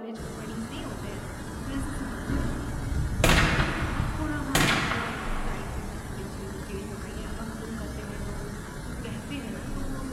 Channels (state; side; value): identical; both; correlation 1.00